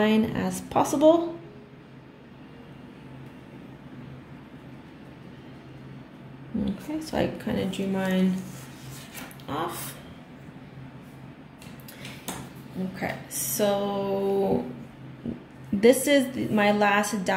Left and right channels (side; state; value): both; identical; correlation 1.00